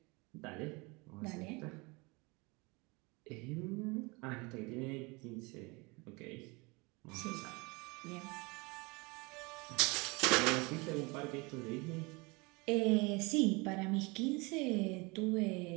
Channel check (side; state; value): left; quieter; 26.9 dB